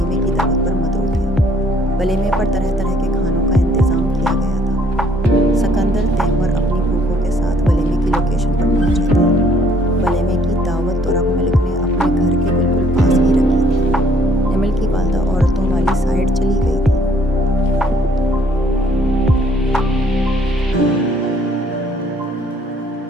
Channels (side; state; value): both; normal; correlation 0.63